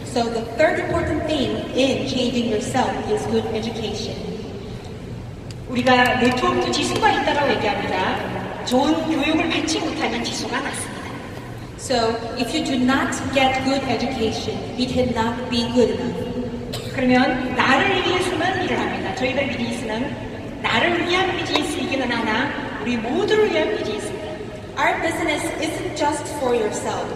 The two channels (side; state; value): both; identical; correlation 1.00